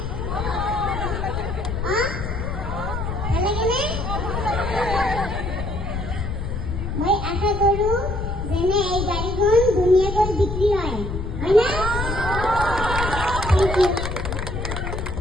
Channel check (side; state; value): left; noise; rumble, 4 dB below the sound